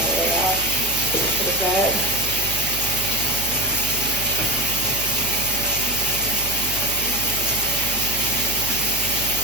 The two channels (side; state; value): right; noise; hum, 10 dB below the sound